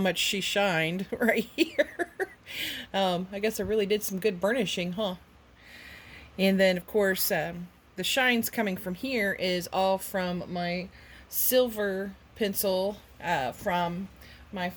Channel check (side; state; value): both; identical; correlation 1.00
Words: she shined right here. I guess I really did some good burnishing, huh? And then, of course, the shines coming from here is all from my silver pencil from my